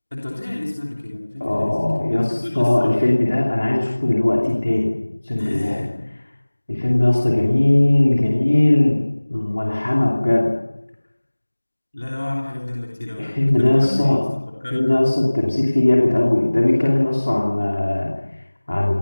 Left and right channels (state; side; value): inverted; both; correlation -1.00